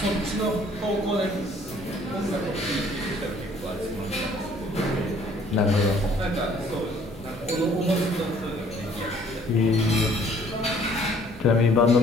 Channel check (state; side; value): normal; both; correlation 0.59